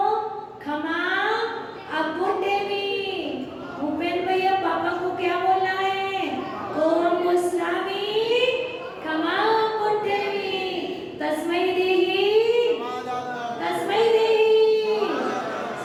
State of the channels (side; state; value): both; identical; correlation 1.00